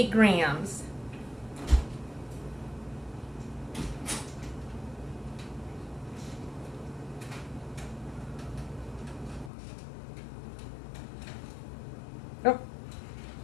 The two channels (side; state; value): right; drops out; at 9.5 s